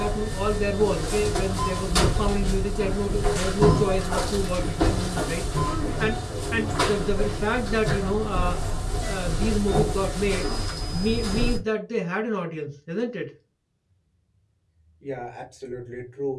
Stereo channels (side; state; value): both; identical; correlation 1.00